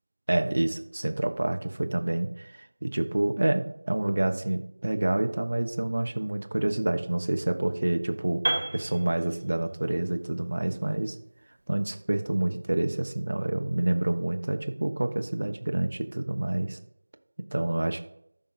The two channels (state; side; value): inverted; both; correlation -1.00